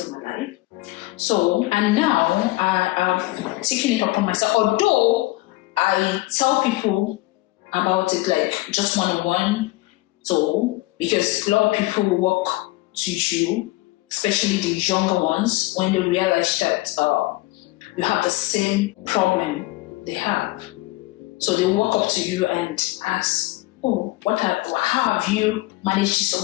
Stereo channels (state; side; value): quieter; right; 20.2 dB